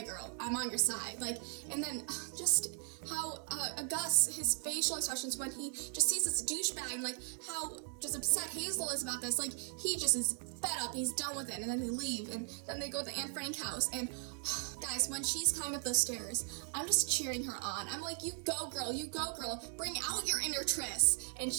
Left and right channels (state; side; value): silent; left; 53 dB below the other